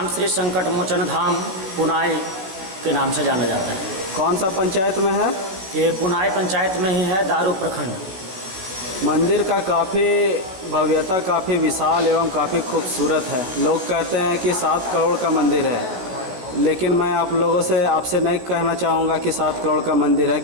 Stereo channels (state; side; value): late; left; 16 ms